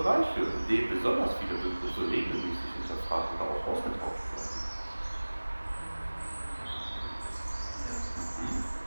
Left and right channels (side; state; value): both; inverted; correlation -1.00